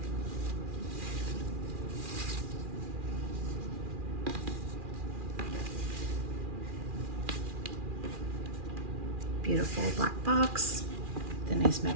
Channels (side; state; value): left; late; 2.4 ms